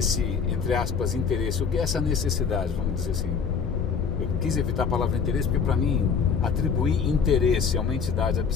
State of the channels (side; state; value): right; quieter; 6.1 dB